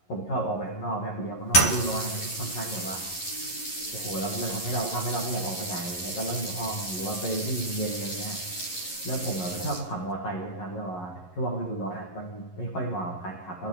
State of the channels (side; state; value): right; late; 11 ms